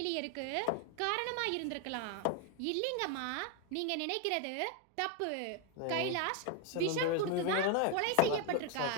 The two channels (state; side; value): different; both; correlation 0.01